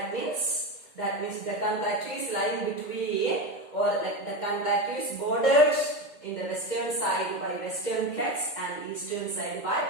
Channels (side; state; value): right; late; 2.0 ms